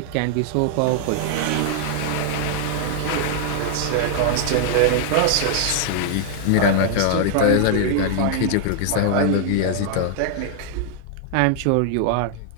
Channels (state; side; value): different; both; correlation 0.00